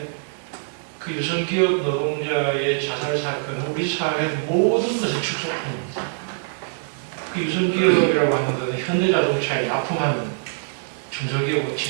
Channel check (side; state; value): left; silent; digital silence